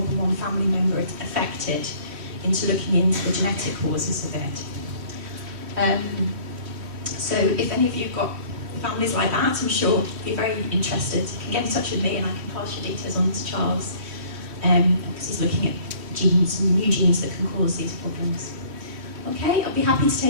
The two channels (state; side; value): late; left; 3.1 ms